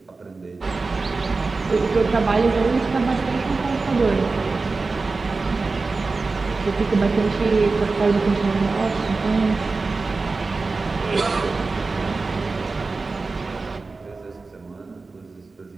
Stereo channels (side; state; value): left; quieter; 3.9 dB